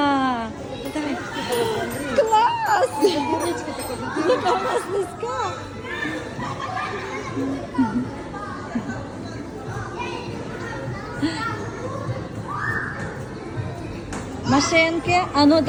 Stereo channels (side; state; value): both; identical; correlation 1.00